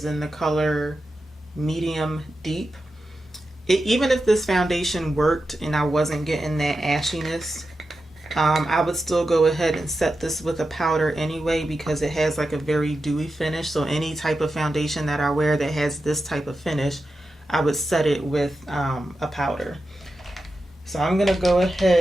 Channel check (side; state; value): both; normal; correlation 0.90